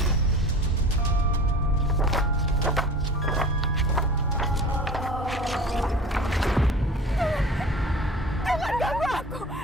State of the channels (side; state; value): both; normal; correlation 0.39